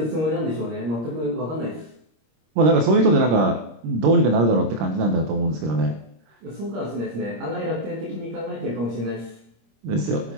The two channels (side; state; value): left; late; 26 ms